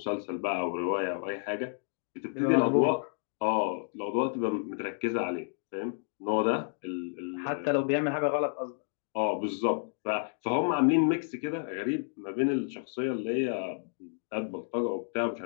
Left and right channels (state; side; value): silent; right; digital silence